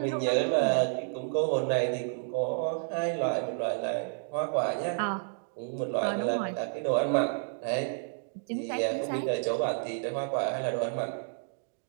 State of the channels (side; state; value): left; silent; digital silence